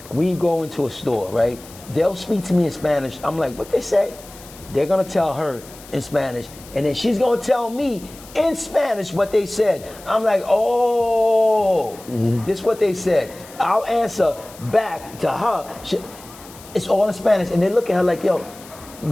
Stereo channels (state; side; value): noise; left; hiss, 20 dB below the sound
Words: We go into a store, right? They'll speak to me in Spanish. I'm like, what they say? They're gonna tell her in Spanish, and then she's gonna tell me in Spanish what they said. I'm like, oh, this is what they said. I'll answer back to her. It's all in Spanish, and they look at her like, yo,